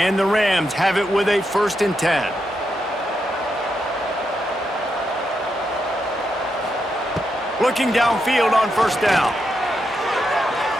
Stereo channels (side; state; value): both; normal; correlation 0.83